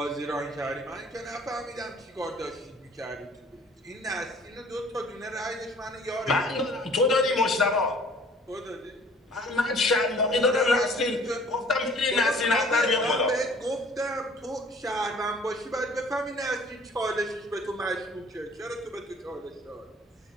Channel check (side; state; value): both; normal; correlation 0.53